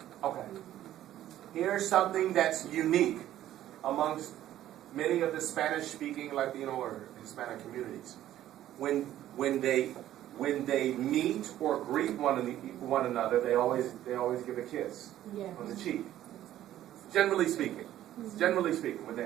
Okay. Here's something that's unique amongst many of the Spanish-speaking Latino or Hispanic communities. When they meet or greet one another, they always give a kiss on the cheek. Generally speaking,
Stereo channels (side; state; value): left; quieter; 12.8 dB